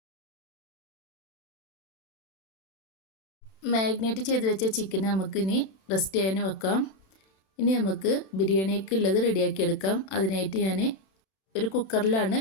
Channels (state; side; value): late; right; 31 ms